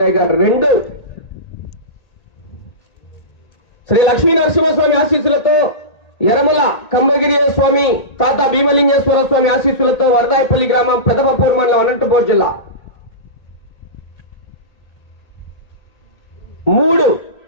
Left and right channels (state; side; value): late; right; 1.8 ms